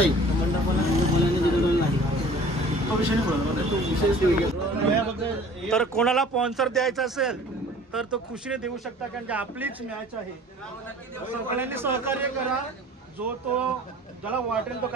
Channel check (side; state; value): both; normal; correlation 0.48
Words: तर कोणाला स्पॉन्सर द्यायचा असेल तर तो खुशीने देऊ शकता, कारण की आपलीच मॅच आहे. सगळ्यांनी सहकार्य करा. जो तो ज्याला वाटेल तो